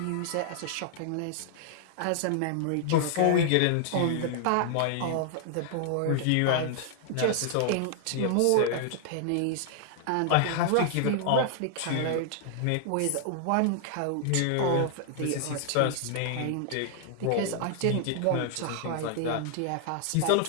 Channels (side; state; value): both; different; correlation -0.01